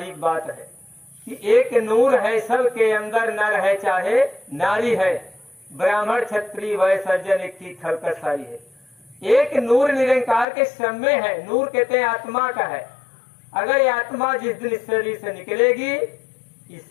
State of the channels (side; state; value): right; drops out; at 10.5 s